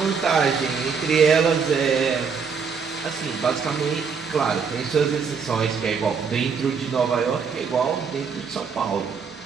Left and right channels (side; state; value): left; quieter; 5.9 dB